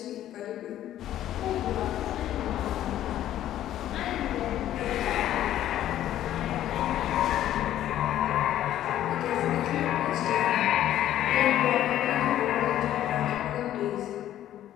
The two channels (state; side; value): quieter; right; 12.3 dB